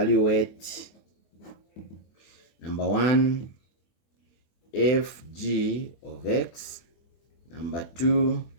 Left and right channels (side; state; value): right; late; 24 ms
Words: number 1 fg of x, number 2